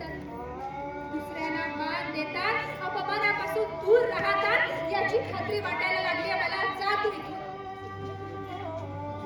दुसऱ्यांना मान देतात, अपमानापासून दूर राहतात याची खात्री वाटायला लागली मला. जा तू इथून.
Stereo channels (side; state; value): both; identical; correlation 1.00